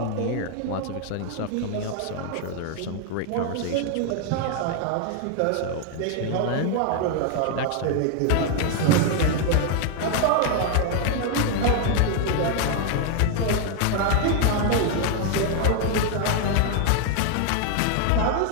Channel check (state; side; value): different; both; correlation 0.00